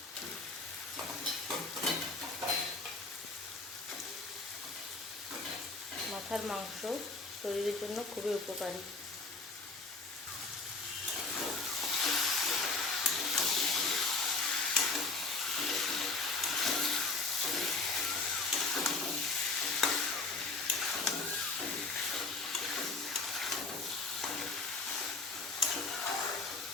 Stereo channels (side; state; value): right; quieter; 3.5 dB